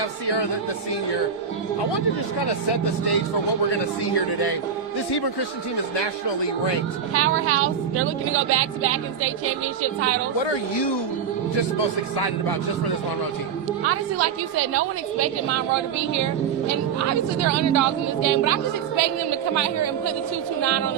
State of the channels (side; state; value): left; quieter; 7.3 dB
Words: Sierra, the senior. I want to just kind of set the stage for what we're going to see here today. This Hebron Christian team is nationally ranked. Powerhouse. They're looking to go back-to-back in state championship titles. What are you just most excited about just for this Monroe team? Honestly, like you said, no one expected Monroe to be here. And obviously they're underdogs in this game, but I'm just expecting them to come out here and put the 229 on